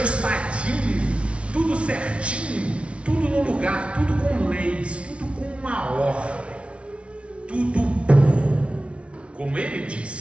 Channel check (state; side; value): late; left; 0.060 ms